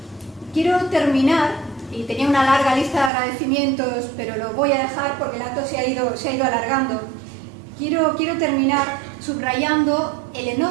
Quiero terminar, y tenía una larga lista de agradecimientos, pero lo voy a dejar porque el acto se ha ido alargando. Quiero terminar subrayando el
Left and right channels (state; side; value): drops out; left; at 3.1 s